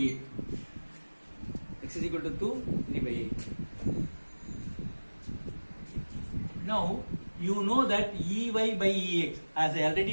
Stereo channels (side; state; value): both; inverted; correlation -1.00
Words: X is equal to 2, 3 by 8. Now, you know that Ey by Ex, as I